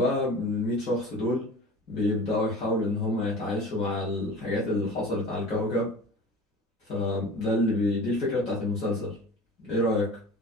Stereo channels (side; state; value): both; normal; correlation 0.38